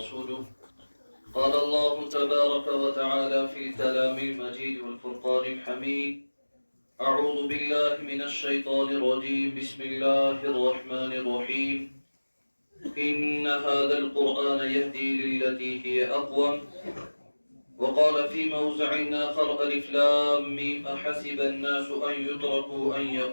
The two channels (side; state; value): both; inverted; correlation -1.00